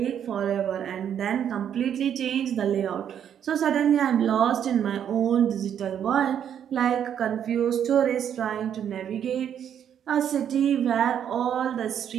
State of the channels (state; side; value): quieter; left; 9.1 dB